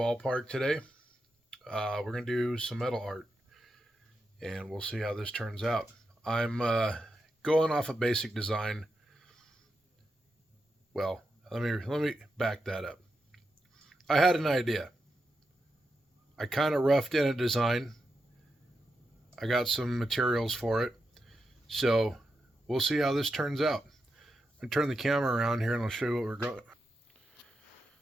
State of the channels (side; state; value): both; normal; correlation 0.87